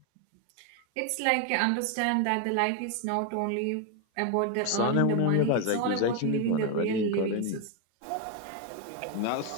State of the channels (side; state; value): both; different; correlation 0.01